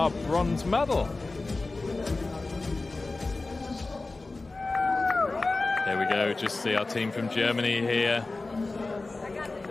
bronze medal. There we go, just see our team from Germany here.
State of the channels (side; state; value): right; quieter; 3.4 dB